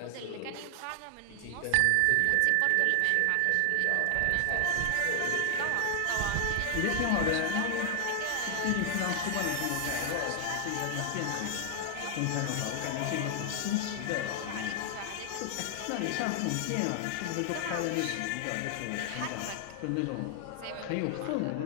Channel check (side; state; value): both; different; correlation -0.01